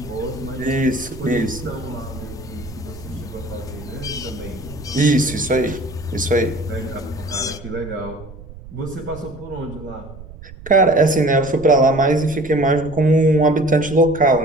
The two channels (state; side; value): noise; right; rumble, 16 dB below the sound